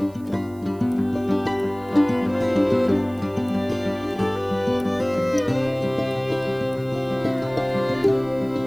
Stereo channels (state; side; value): noise; right; hiss, 28 dB below the sound